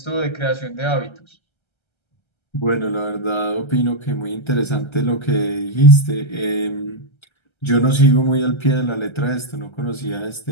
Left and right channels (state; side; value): late; right; 1.3 ms